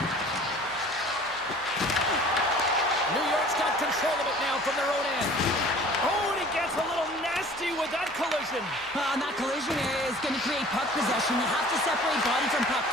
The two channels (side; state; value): right; noise; hum, 26 dB below the sound